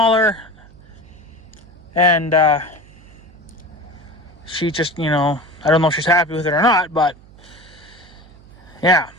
and she just, you know, I don't know if she's happy with it or not, but yeah.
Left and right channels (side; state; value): right; noise; hum, 23 dB below the sound